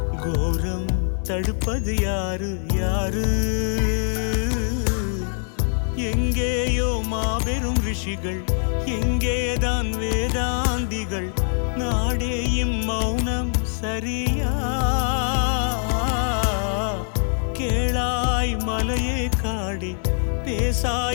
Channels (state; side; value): silent; right; 63 dB below the other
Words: கோரம் தடுப்பது யாரு யாரு எங்கேயோ மாபெரும் ரிஷிகள் எங்கேதான் வேதாந்திகள் நாடேயும் மௌனம் சரியா கேளாய் மலையே காடே